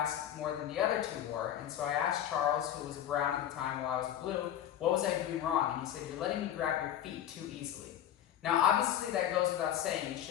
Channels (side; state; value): right; quieter; 10.9 dB